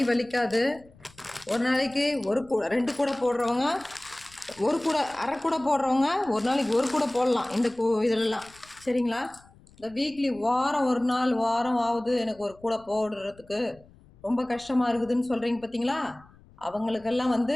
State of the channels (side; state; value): left; noise; rumble, 26 dB below the sound